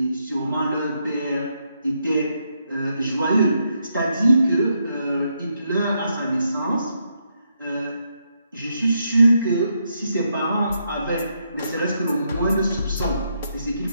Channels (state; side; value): inverted; both; correlation -0.79